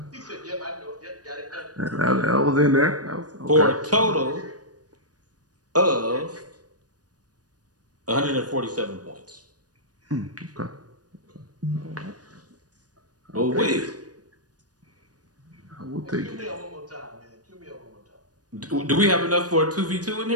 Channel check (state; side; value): late; left; 0.68 ms